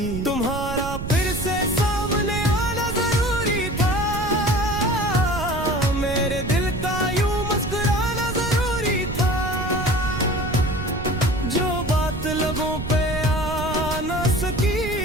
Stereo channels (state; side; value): noise; right; rumble, 7 dB below the sound